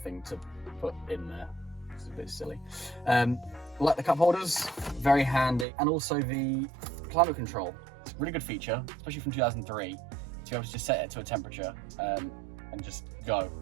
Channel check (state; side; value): drops out; left; at 5.7 s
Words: to put in there. It's a bit silly. Like the cup holders, very handy, and also the climate control. It's a really good feature, especially from 2003, to be able to just set it to a temperature and just go.